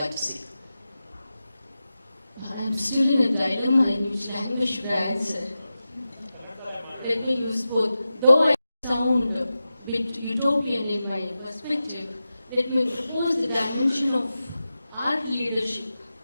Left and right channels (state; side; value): inverted; both; correlation -0.93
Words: to see? I'm still in a dilemma in which language should I answer. Let me use both. Though I sound a bit utopian in my perspective, let me propose the dimension of art leadership.